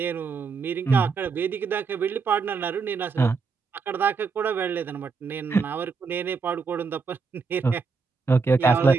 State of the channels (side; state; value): left; quieter; 4.9 dB